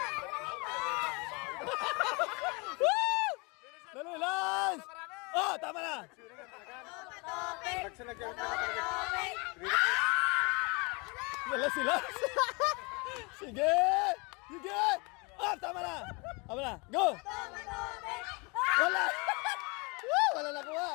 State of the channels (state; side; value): quieter; right; 29.2 dB